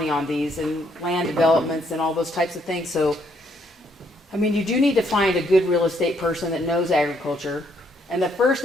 on these and land developments and all those types of things. So, I mean, you do need to find a good real estate person that knows agriculture. And the first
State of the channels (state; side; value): normal; both; correlation 0.71